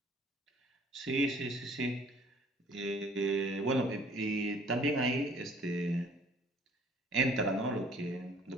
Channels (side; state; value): both; normal; correlation 0.56